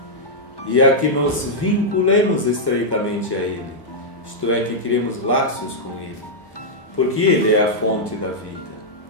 e a que nos vinculemos estreitamente a Ele, isto é, que criemos laços com Ele, porque Ele é a fonte da vida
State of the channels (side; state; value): right; late; 1.2 ms